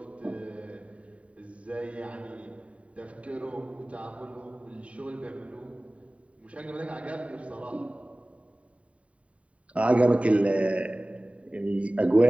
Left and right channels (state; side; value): late; left; 0.065 ms